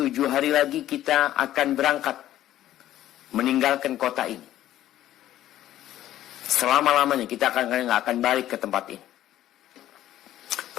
hari lagi kita akan berangkat meninggalkan kota ini. Selama-lamanya kita nggak akan balik ke tempat ini.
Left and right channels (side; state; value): right; quieter; 13.1 dB